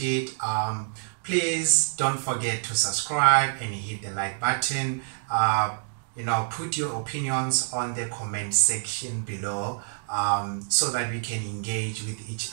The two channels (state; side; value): silent; left; digital silence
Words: Please don't forget to subscribe and hit the like button. Put your opinions on the comment section below, so that we can engage with each